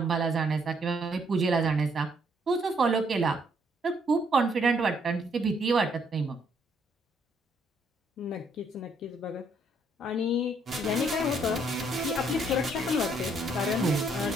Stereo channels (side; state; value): both; normal; correlation 0.69